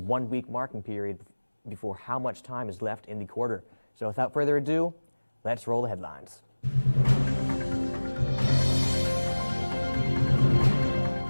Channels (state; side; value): inverted; both; correlation -1.00